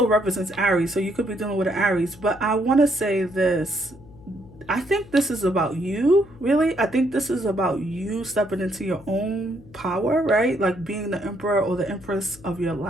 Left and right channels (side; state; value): left; noise; hum, 21 dB below the sound